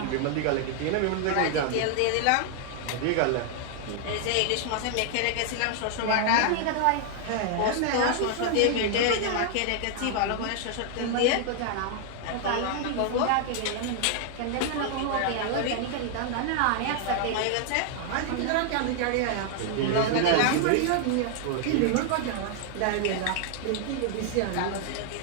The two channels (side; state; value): both; different; correlation 0.00